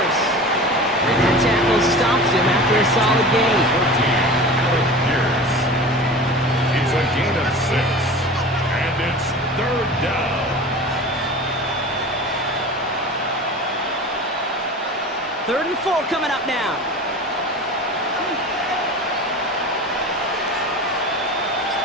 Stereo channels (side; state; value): both; normal; correlation 0.36